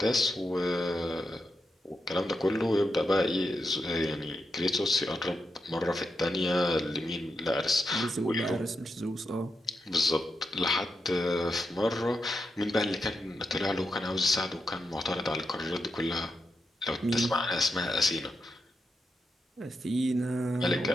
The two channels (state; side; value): normal; both; correlation 0.86